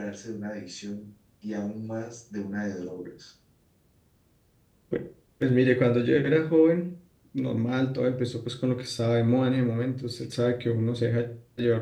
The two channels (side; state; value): both; identical; correlation 1.00